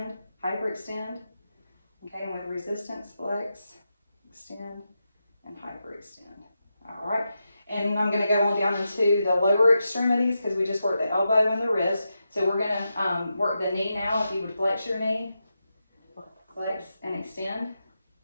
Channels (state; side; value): inverted; both; correlation -0.88